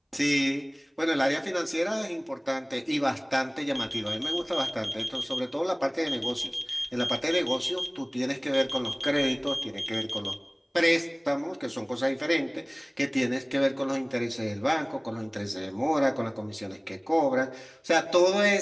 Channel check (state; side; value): identical; both; correlation 1.00